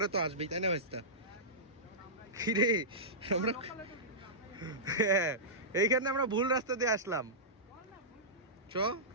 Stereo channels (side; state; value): both; normal; correlation -0.16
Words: তো আসবেই, তাই না ভাইস্তা? রে আমরা হ্যাঁ, এইখানে আমরা ভুল রাস্তা দিয়ে আসলাম।